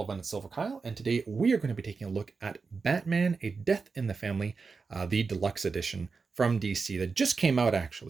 everyone, it's Silver Kyle, and today we are going to be taking a look at Batman: A Death in the Family, the deluxe edition from DC that just came out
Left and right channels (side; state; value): left; quieter; 4.7 dB